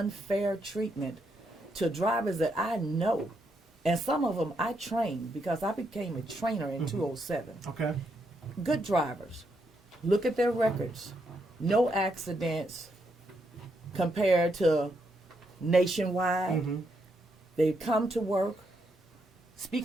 treatment to drivers that I know. And some of them I trained, because I became a trainer in 2007. Okay. Good drivers. Look at their records. No accidents compared to nationwide. Mm-hmm. They come to work.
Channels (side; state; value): both; normal; correlation 0.79